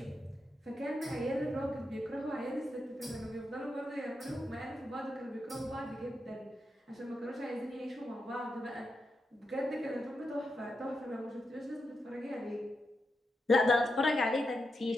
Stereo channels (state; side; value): normal; both; correlation 0.86